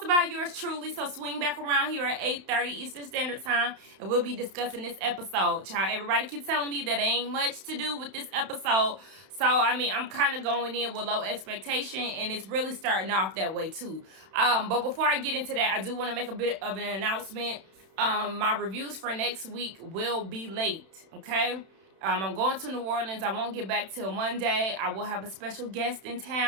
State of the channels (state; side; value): late; left; 31 ms